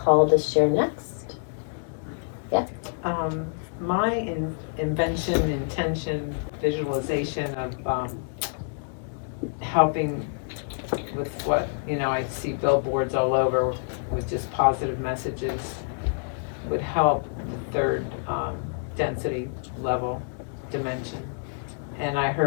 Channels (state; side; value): silent; right; digital silence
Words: to share next? My invention, intention, visualization of helping with what, I see billboards all over with just positive messages would help the third density level dimension. And I